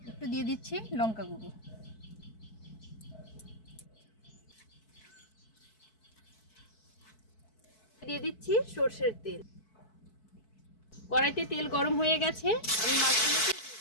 একটু দিয়ে দিচ্ছি লঙ্কা গুঁড়ো। দিয়ে দিচ্ছি সরষের তেল। কড়াইতে তেল গরম হয়ে গেছে। আমি মাছগুলোকে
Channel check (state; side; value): late; right; 4.6 ms